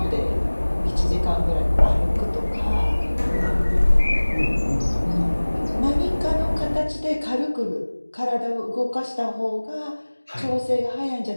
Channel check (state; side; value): inverted; both; correlation -1.00